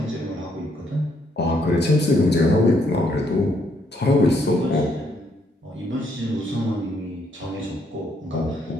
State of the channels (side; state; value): both; normal; correlation 0.72